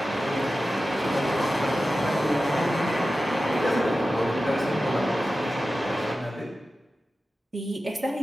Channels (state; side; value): normal; both; correlation 0.94